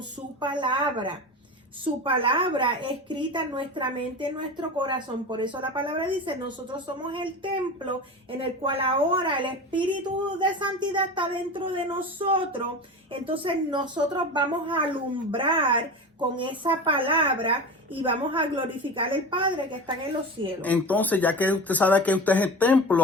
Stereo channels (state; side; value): normal; both; correlation 0.29